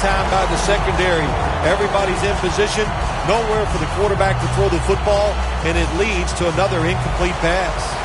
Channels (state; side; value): identical; both; correlation 1.00